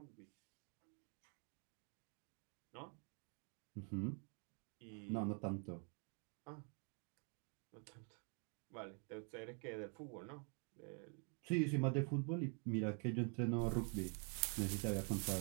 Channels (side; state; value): left; quieter; 38.5 dB